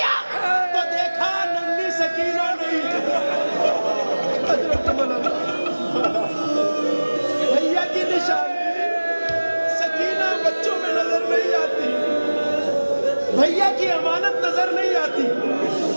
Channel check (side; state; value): both; inverted; correlation -1.00